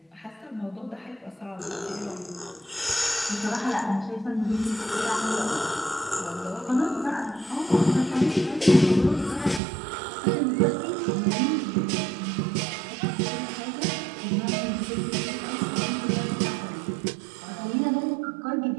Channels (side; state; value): left; drops out; at 9.6 s